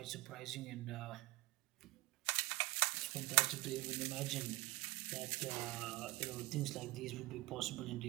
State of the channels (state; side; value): quieter; left; 21.0 dB